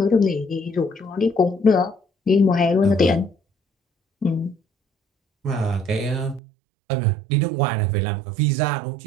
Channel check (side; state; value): left; drops out; at 6.4 s